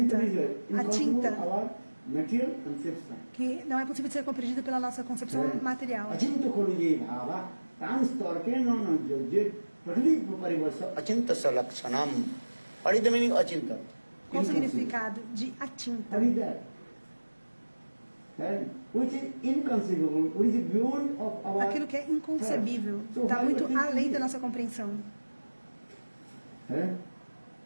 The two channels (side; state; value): both; inverted; correlation -1.00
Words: is inconceivable Achinta, our material conception. que não é possível de ser compreendido pela nossa concepção material. अचिंत खोलु ये भावा तान स्तर के न जे प्रकृति परिवर्ष अचिंत सलक्षणम. What is the meaning अचिंत? Qual o significado de Achinta? What is that? Which is inconceivable, which is beyond of our. Aquilo que é inconcebível, So está why muito we think além it? da nossa compreensão.